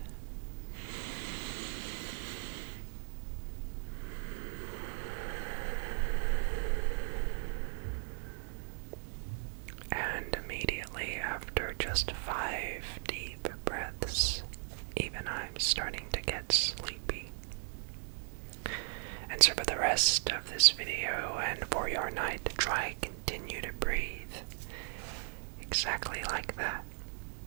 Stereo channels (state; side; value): silent; left; digital silence